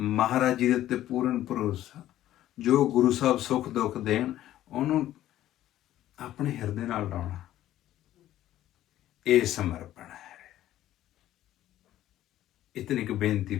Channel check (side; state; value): right; quieter; 13.3 dB